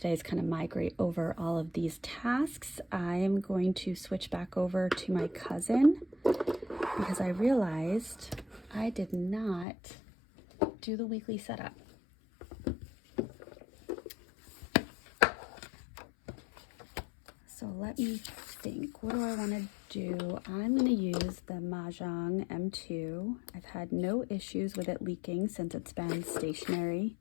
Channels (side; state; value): right; drops out; at 9.7 s